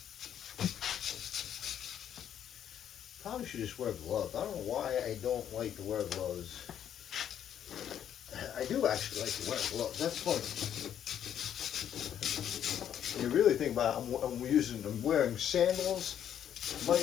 Probably should just wear gloves. I don't know why I don't like to wear gloves. I do actually like to wear gloves. That's funny. You really think about it, I'm wearing sandals. Might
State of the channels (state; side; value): quieter; right; 9.8 dB